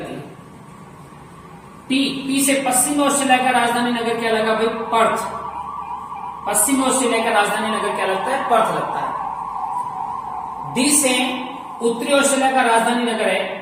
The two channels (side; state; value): both; identical; correlation 1.00